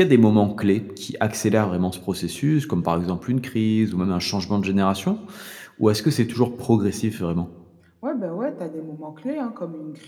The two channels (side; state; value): both; identical; correlation 1.00